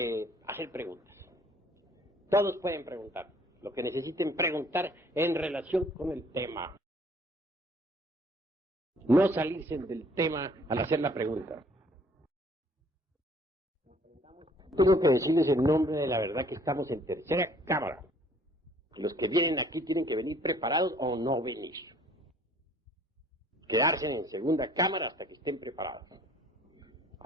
hacer preguntas. Todos pueden preguntar lo que necesiten preguntar en relación con el tema. No salirse del tema al hacer la pregunta. Tengo que decirles en nombre de la verdad que estamos en tercera cámara. Los que vienen aquí tienen que venir preparados o no venir. Quedarse en segunda cámara hasta que estén preparados.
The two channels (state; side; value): normal; both; correlation 0.57